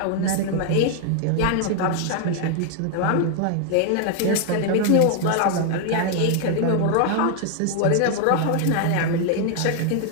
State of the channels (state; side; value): different; both; correlation 0.00